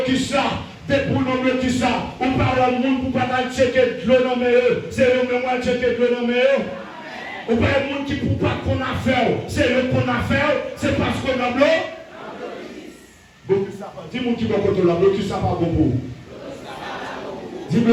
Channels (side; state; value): both; identical; correlation 1.00